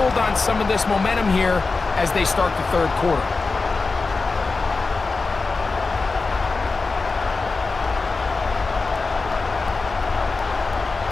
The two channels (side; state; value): right; quieter; 4.0 dB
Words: on some of this momentum here as they start the third quarter?